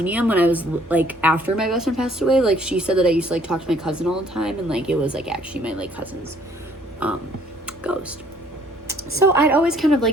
when I was like after my best friend passed away, like she said that I used to like talk to my cousin all the time, and like it was like actually my like cousin's ghost. So I'd always kind of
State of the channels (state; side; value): normal; both; correlation 0.61